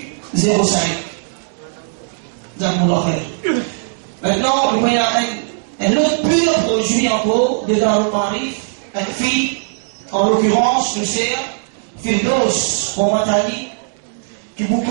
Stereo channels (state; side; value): silent; left; digital silence